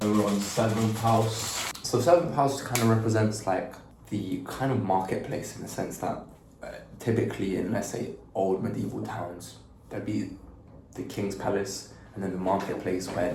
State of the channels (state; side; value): identical; both; correlation 1.00